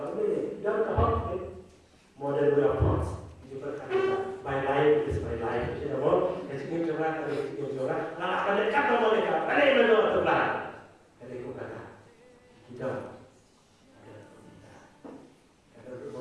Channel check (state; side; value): identical; both; correlation 1.00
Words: ini jangan kahok model weapons juga kan my life is my life jadi apa jadi coba kalau coba nah pada kata mereka pada menurut Tuhan dari kata kita ada